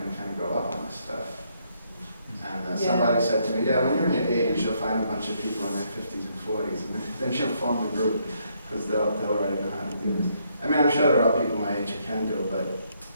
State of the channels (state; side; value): inverted; both; correlation -0.73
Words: to kind of grow up on this stuff. And somebody said to me, yeah, when you're in your 80s, you'll find a bunch of people in their 50s and 40s, and then you'll form the group, because they'll already know how to do this. I mean, I'm sure there are people my age who can do it, but